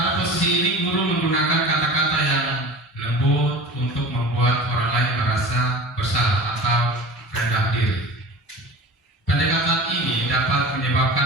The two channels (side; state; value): both; normal; correlation 0.36